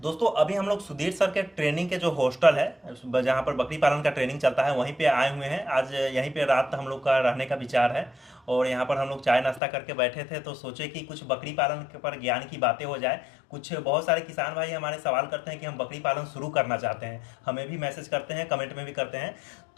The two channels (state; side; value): drops out; right; at 9.6 s